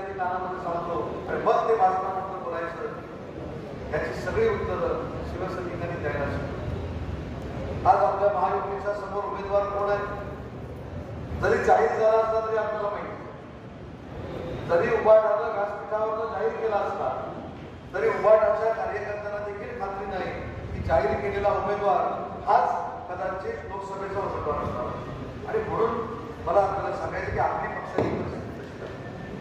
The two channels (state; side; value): identical; both; correlation 1.00